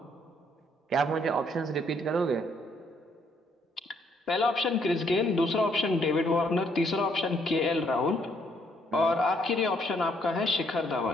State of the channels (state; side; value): normal; both; correlation 0.70